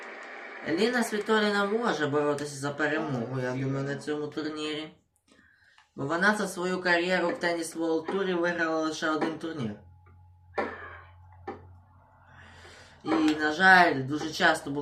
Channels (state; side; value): identical; both; correlation 1.00